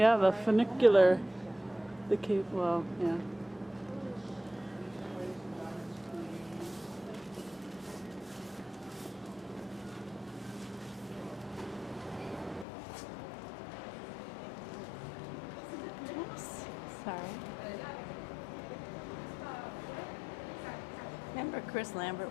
the funicular. The cape, well, yeah. Sorry. Remember Chris Lambert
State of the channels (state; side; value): drops out; right; at 12.7 s